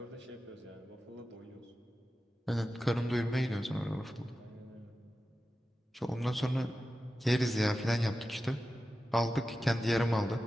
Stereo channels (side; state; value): both; normal; correlation 0.93